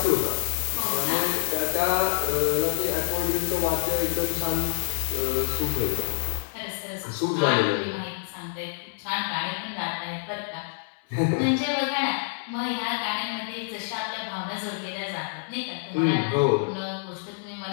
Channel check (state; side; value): silent; right; 59 dB below the other